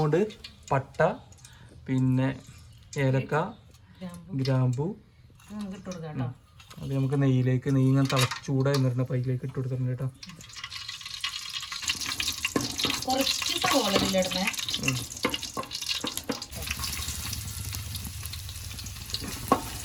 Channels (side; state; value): both; identical; correlation 1.00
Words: പോണ്ട് പട്ട, പിന്നെ ഏലക്ക, ഗ്രാമ്പു. അത് നമുക്ക് നെയ്യിലേക്ക്, നെയ്യ് ഇങ്ങനെ ചൂടായി നിറഞ്ഞ പൈലേക്ക് ഇട്ട് കൊടുക്കുന്നുണ്ട് കേട്ടോ.